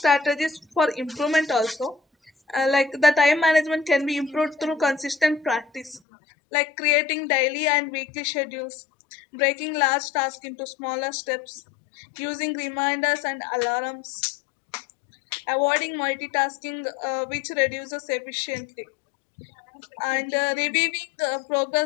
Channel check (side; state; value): right; drops out; at 6.0 s